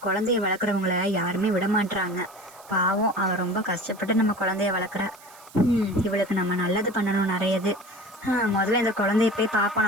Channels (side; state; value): right; noise; hiss, 23 dB below the sound